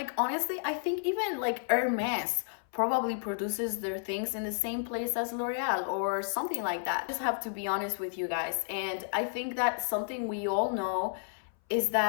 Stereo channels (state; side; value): silent; right; 57 dB below the other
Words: honestly, I think even like Hermes probably produces their things in the same place as L'Oreal or something like that. I just have to be honest with you guys, and I think that something we all know is